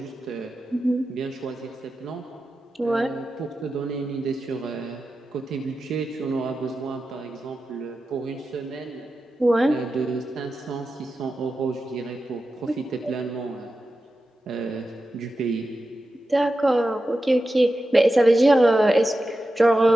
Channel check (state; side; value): normal; both; correlation 0.92